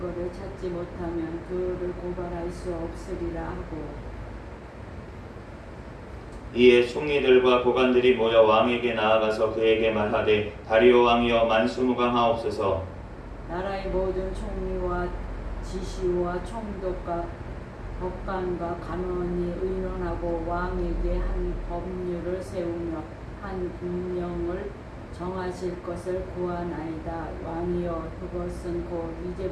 찾지 못하면 그를 고발할 수 없으리라 하고 이에 총리들과 고관들이 모여 왕에게 나아가서 그에게 말하되 다리오 왕이여 만수무강하옵소서. 나라의 모든 총리와 지시와 총독과 법관과 간원이 의논하고 왕에게 한 법률을 세우며 한 운명을 정하실 것을 구하나이다. 왕이여 그것은 곧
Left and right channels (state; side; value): identical; both; correlation 1.00